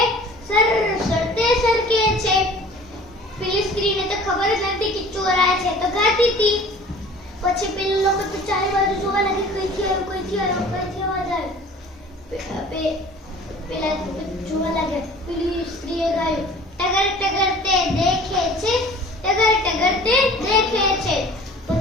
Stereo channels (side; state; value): both; normal; correlation 0.46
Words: સરસતે સરકે છે। પેલી સ્ત્રીને તો ખબર જ નથી કે ચોર આયા છે, તો ગાતી હતી। પછી પેલા લોકો તો ચારે બાજુ જોવા લાગે, કઈથી અવાજ આવે। પેલા જોવા લાગ્યા। પેલી સ્ત્રીએ ગાયું, ટગર ટગર તે દેખે છે, ટગર ટગર તે દેખે છે।